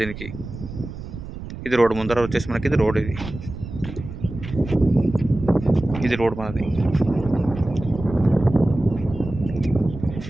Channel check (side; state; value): right; noise; rumble, 11 dB below the sound